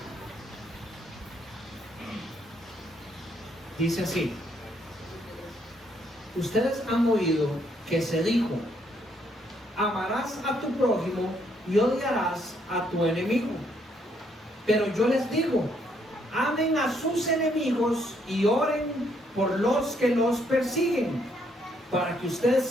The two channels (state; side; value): normal; both; correlation 0.71